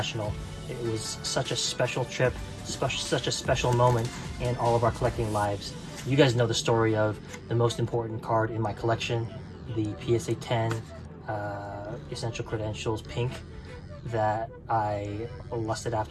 It was such a special trip, such a special moment in all of our collecting lives. You guys know the story of the most important card in my collection, the PSA 10 Essential Credentials Pink that I lusted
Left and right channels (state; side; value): identical; both; correlation 1.00